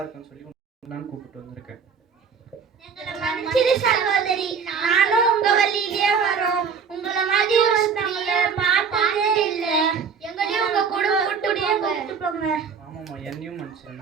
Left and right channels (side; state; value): left; quieter; 6.1 dB